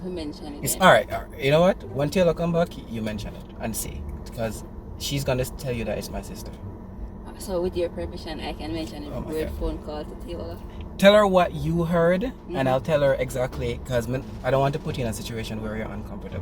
mention it? It's then? all right. You know what? When Taylor come back, you mention it and see, because she's gonna tell you that it's my sister. So with your permission, I can mention Oh a my weird God. phone call to Taylor. Tell her what you heard, Mhm. and I'll tell her exactly, because I don't want to put you in a situation where you're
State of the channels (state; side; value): identical; both; correlation 1.00